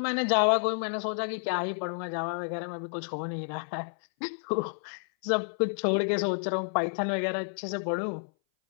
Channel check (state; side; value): silent; right; 58 dB below the other